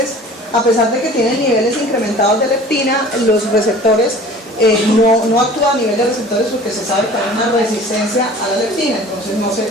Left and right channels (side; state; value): both; normal; correlation 0.45